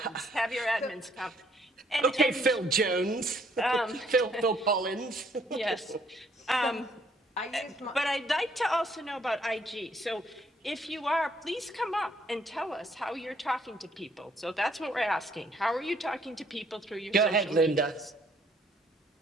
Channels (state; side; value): normal; both; correlation 0.66